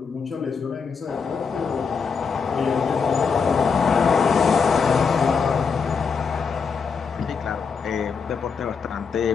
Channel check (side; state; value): right; quieter; 5.7 dB